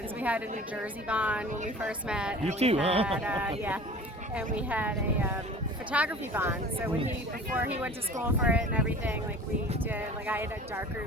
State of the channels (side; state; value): both; normal; correlation 0.42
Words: We had a New Jersey bond when we first met. You and too, we had, huh? yeah, and we had a photography bond. So before he went to school for it and everything, we did. I had a dark